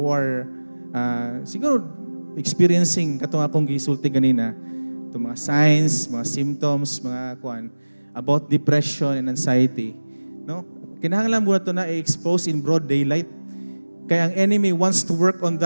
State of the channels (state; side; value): inverted; both; correlation -1.00